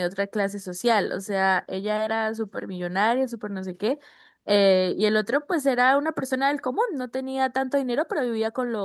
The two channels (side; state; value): both; identical; correlation 1.00